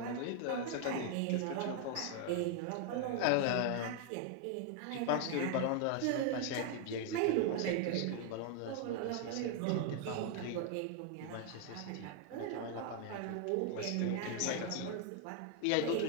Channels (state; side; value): different; both; correlation 0.00